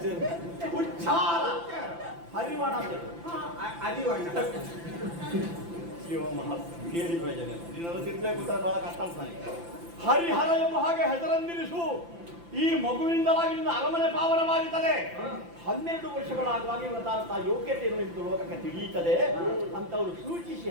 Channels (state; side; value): late; left; 5.9 ms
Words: ಉಚ್ಚಾರ ಹರಿವಾಣ ಅರಿವಣ್ಣ ಶಿವ ಮಹಾ ಕೇಳಿ ಪ್ರಯೋಜನ ಇಲ್ಲ. ನೀನು ತಿರ್ಬೇಕು ಬಹಳ ಕಷ್ಟ ಆಗ್ತಾನೆ. ಹರಿಹರ ಎಂಬ ಹಾಗೆ ಹೆಸರನ್ನಿರಿಸು. ಈ ಮಗುವಿನಿಂದಲಾಗಿ ನಿನ್ನ ಅರಮನೆ ಪಾವನವಾಗುತ್ತದೆ. 12 ವರ್ಷಗಳಾಗುವಾಗ ಇವತ್ತಾದಂತಹ ಯೋಗ್ಯತೆಯನ್ನು ಇಂದು ಲೋಕಕ್ಕೆ ತಿಳಿಯುತ್ತದೆ ಅಂತವರು ಸೂಚಿಸಿ